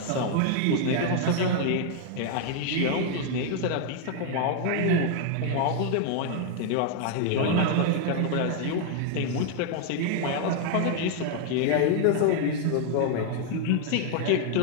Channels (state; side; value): different; both; correlation 0.00